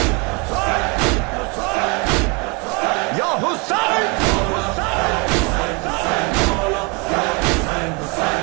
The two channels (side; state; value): left; quieter; 30.3 dB